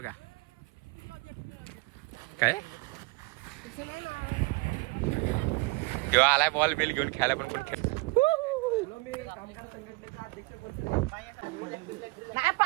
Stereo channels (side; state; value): left; quieter; 25.6 dB